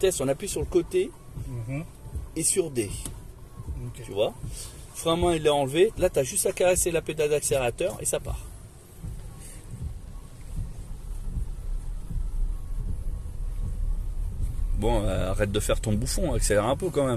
on appuie sur le côté et sur D. Okay. Tu vois? Frein à main, il est enlevé. Là, tu as juste à caresser la pédale d'accélérateur et ça part. Bon, arrête de faire ton bouffon, accélère un peu quand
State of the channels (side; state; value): both; identical; correlation 1.00